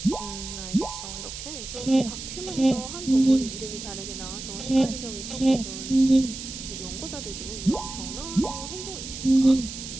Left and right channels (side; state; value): right; noise; hiss, 9 dB below the sound